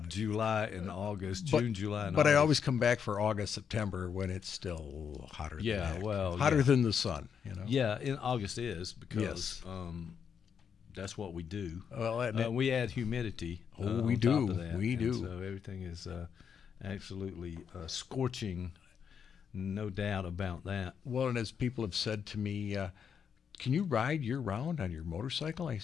of July and August, But- June, July, and But August. I always come back for August, September when it's still hotter. Yeah, than heck. well, hotter yeah. than the sun. You know. Yeah, in August is because Yes. that's what we do. Well, and We add humidity. Oh, we on do. Top of that. We And do. So everything is absolutely scorching. No doubt about that. well, and as people have said to me, can you ride year round on your motorcycle? I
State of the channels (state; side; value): quieter; right; 7.2 dB